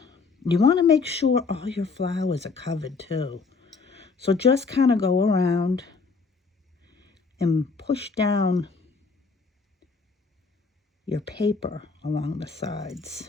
You want to make sure all your flowers are covered too. So just kind of go around and push down your paper along the sides.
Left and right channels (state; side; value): quieter; right; 4.6 dB